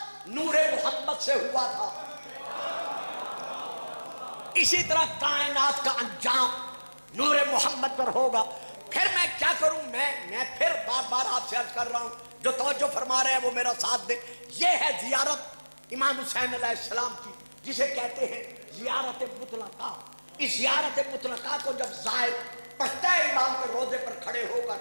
نور محمد سے ہوا تھا، اسی طرح کائنات کا انجام نور محمد پر ہوگا. پھر میں کیا کروں؟ میں پھر بار بار آپ سے عرض کر رہا ہوں، جو توجہ فرما رہے ہیں وہ میرا ساتھ دیں. یہ ہے زیارت امام حسین علیہ السلام کی، جسے کہتے ہیں زیارت مطلقہ. اس زیارت مطلقہ کو جب زائر پڑھتا ہے امام کے روضے پر کھڑے ہو کر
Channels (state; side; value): inverted; both; correlation -1.00